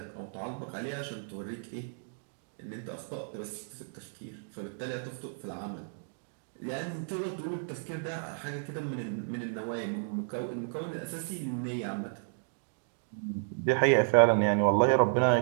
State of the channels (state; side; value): silent; left; digital silence